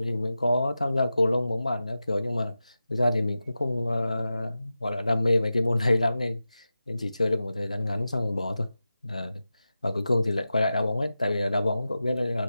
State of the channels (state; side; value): inverted; both; correlation -0.93